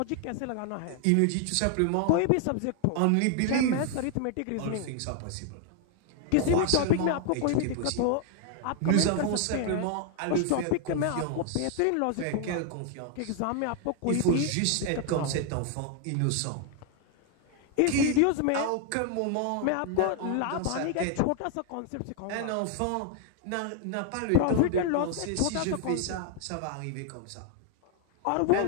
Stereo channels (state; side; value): different; both; correlation 0.00